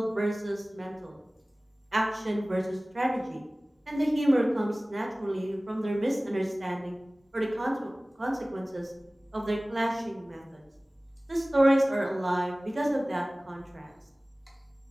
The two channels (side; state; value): both; normal; correlation 0.98